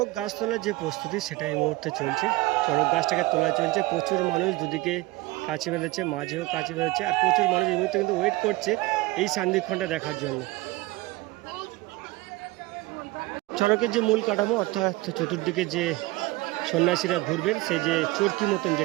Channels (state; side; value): quieter; left; 20.6 dB